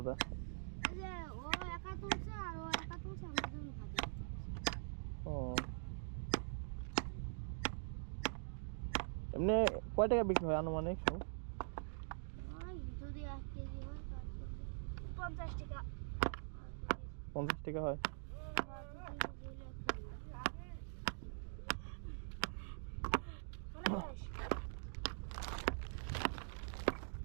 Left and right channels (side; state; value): left; silent; digital silence